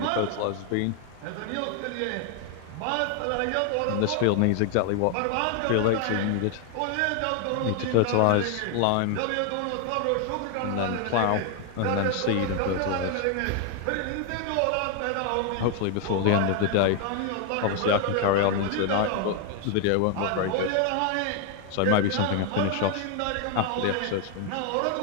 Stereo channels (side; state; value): both; different; correlation 0.00